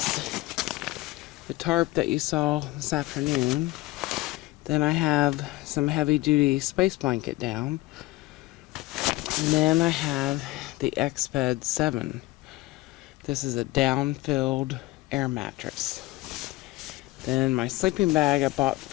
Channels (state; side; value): quieter; right; 19.1 dB